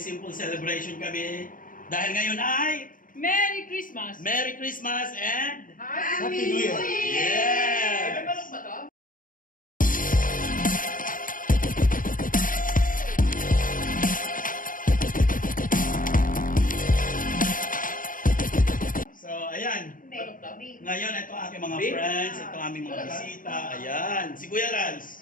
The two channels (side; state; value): right; late; 0.40 ms